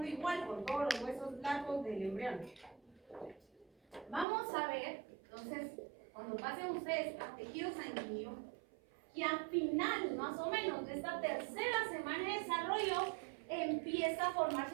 igual con todos los huesos largos del embrión. Vamos a ver, entonces, cuando pasen ustedes a tejido sanguíneo, que al final, más o menos, de esta tercera semana de desarrollo, empieza a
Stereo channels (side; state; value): left; drops out; at 4.2 s